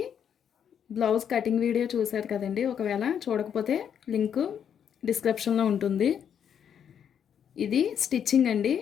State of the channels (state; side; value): quieter; right; 8.4 dB